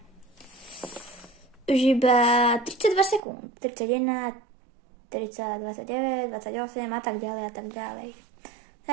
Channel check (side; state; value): left; drops out; at 3.2 s